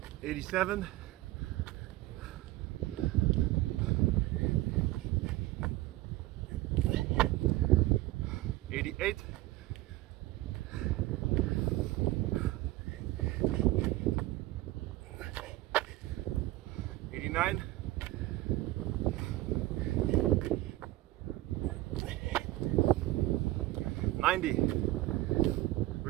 87, 88, 89, 90.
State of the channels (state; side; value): quieter; left; 17.5 dB